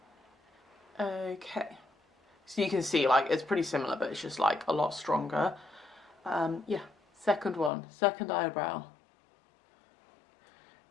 Okay, so you can see like it's pretty similar, but it's just like a lot stronger. Yeah, second eyebrow.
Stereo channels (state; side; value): drops out; right; at 7.7 s